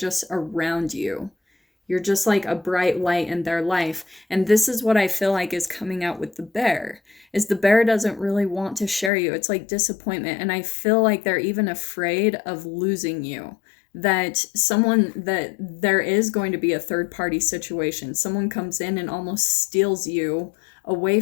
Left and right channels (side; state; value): right; drops out; at 9.1 s